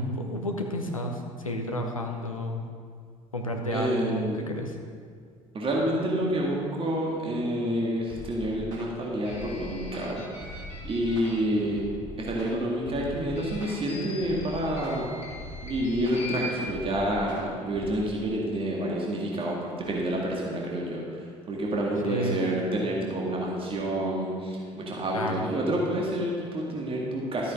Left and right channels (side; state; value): both; normal; correlation 0.52